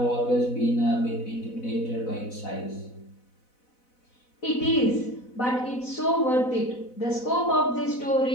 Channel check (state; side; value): late; right; 4.0 ms